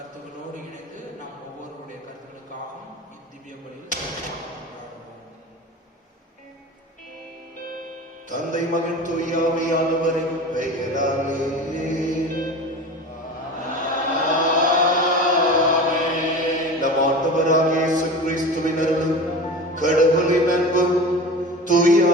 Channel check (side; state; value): both; normal; correlation 0.33